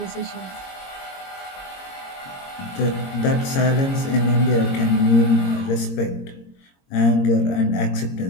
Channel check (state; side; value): late; right; 22 ms